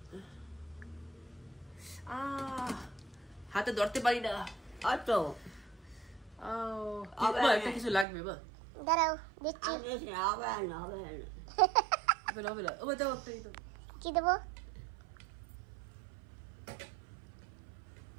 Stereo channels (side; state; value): left; drops out; at 8.1 s